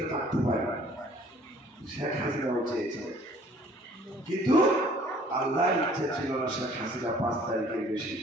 থাকতে পারি। শেখ হাসিনাও চেয়েছে, কিন্তু আল্লাহর ইচ্ছে ছিল না শেখ হাসিনা 5 তারিখের বেশি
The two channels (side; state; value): both; normal; correlation 0.55